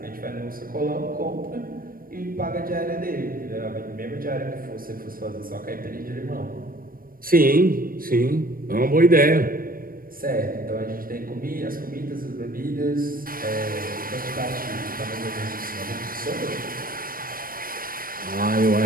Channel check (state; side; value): late; left; 0.41 ms